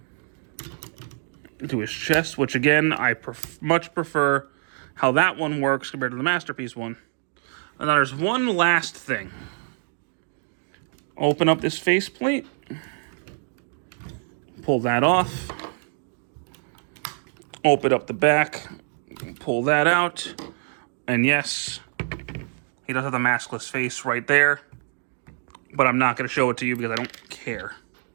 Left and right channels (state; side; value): silent; left; 62 dB below the other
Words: to his chest, which again, I much prefer how that one works compared to the Masterpiece one. And then there's one last thing. Open up this faceplate. Pull that off. Open up the back. Pull that out. And yes, he does have the maskless face right there. But I'm not going to show it to you because I don't care.